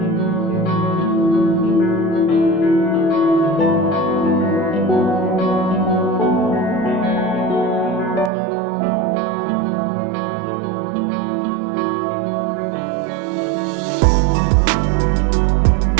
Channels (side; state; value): left; drops out; at 8.3 s